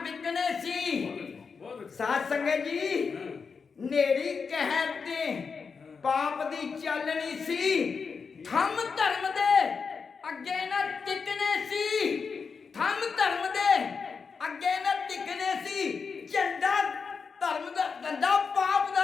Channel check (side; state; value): right; quieter; 5.4 dB